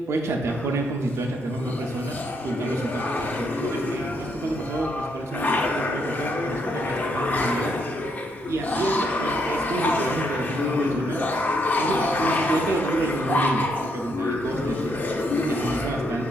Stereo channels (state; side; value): normal; both; correlation 0.75